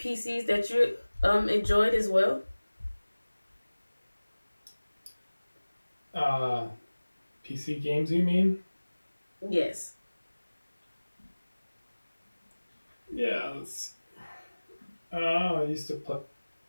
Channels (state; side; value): inverted; both; correlation -1.00